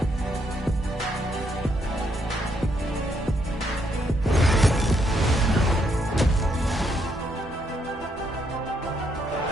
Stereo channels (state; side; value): normal; both; correlation 0.74